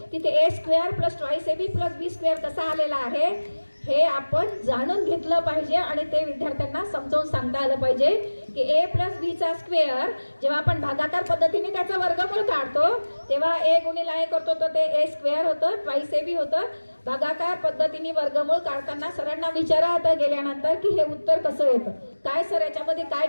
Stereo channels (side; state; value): both; inverted; correlation -1.00